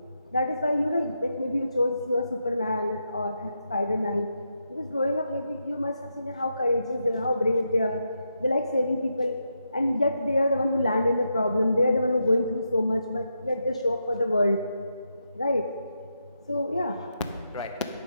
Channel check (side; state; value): both; inverted; correlation -0.84